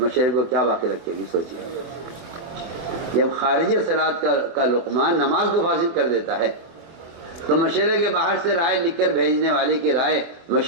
کو کیا باقی رکھے گی؟ سوچیے، جب خارج صلاۃ کا لقمہ نماز کو فاسد کر دیتا ہے تو مشورے کے باہر سے رائے لکھ کر بھیجنے والے کی رائے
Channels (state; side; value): late; left; 24 ms